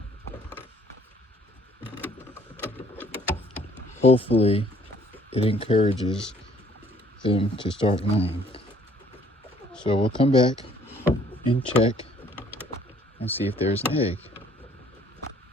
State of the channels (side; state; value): both; normal; correlation 0.60